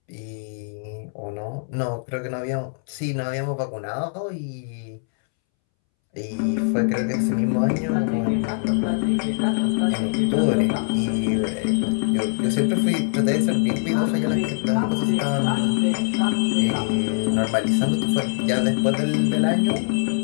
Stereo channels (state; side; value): silent; right; 63 dB below the other